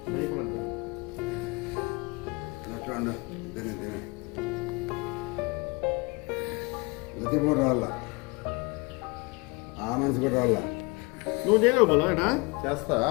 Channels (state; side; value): quieter; right; 27.5 dB